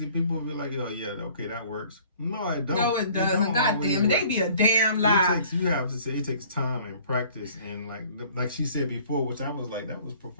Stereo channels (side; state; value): both; inverted; correlation -0.53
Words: People will be like, oh yeah, okay, that works. No, I don't. No, it doesn't. God damn it, they be a damn lie. You have to say it takes time and practice, and like she said before, which I was like, that was